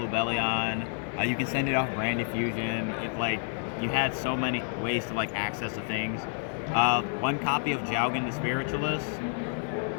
You can send it off Branded Fusion. You had so many ways to access the things. 1 copy of Jaugen the Spiritualist.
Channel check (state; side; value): silent; right; 55 dB below the other